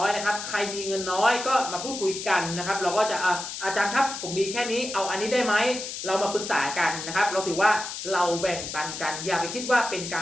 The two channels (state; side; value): noise; left; hiss, 7 dB below the sound